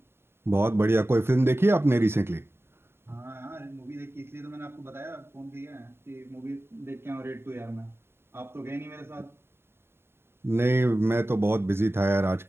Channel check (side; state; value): left; late; 0.11 ms